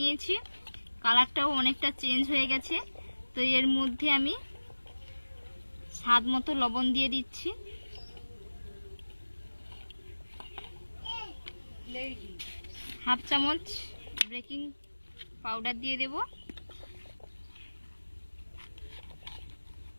কালারটাও অনেকটা চেঞ্জ হয়ে গেছে। তো এর মধ্যে আমি স্বাদ মতো লবণ দিয়ে দিচ্ছি। হাফ চামচ বেকিং পাউডার দিয়ে দেব।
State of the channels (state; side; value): inverted; both; correlation -1.00